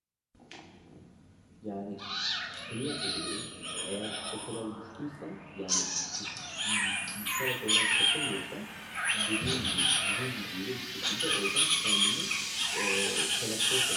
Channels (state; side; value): identical; both; correlation 1.00